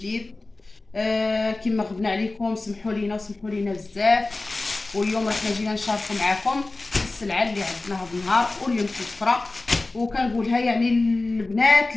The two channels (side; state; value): right; quieter; 3.2 dB